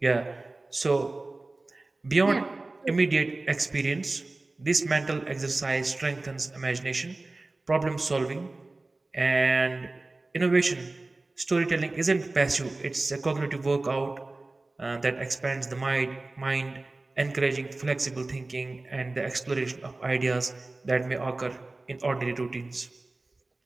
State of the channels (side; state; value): left; quieter; 3.1 dB